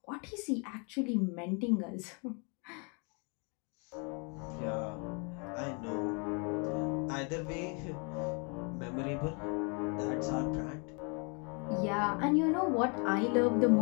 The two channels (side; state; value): right; quieter; 35.1 dB